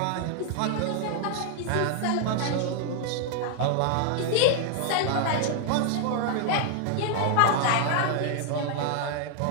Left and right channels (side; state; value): both; different; correlation 0.00